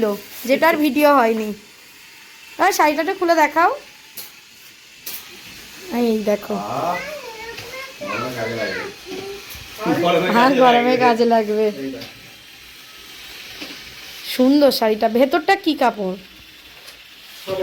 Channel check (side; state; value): both; identical; correlation 1.00